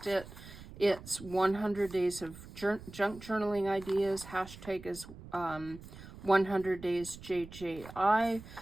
it, it's 100 days of junk journaling ideas. Hashtag is 100 days JJI.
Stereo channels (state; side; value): noise; right; rumble, 16 dB below the sound